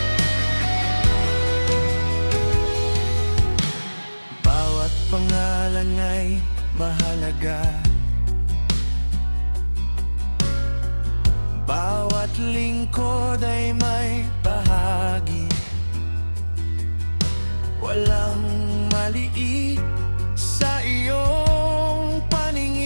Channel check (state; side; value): inverted; both; correlation -1.00